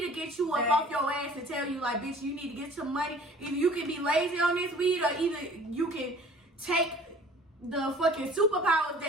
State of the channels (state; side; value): normal; both; correlation 0.50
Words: to get you up off your ass and tell you like, bitch, you need to get some money. Either you can be lazy on this weed, or either you can take the fucking superpowers